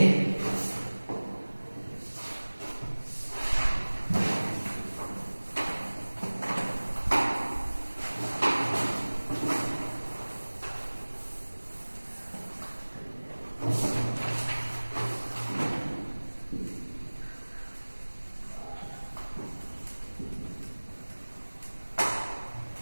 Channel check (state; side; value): inverted; both; correlation -1.00